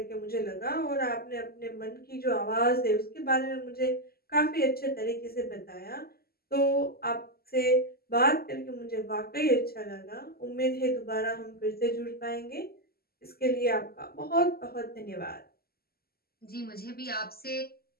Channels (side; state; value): right; late; 0.45 ms